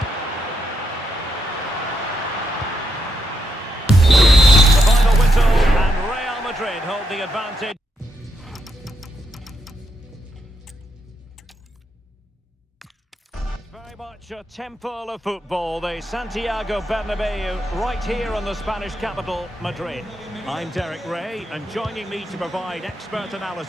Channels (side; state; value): both; normal; correlation 0.80